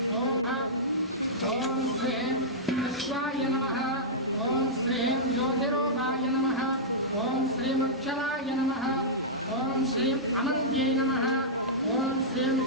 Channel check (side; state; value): both; normal; correlation -0.12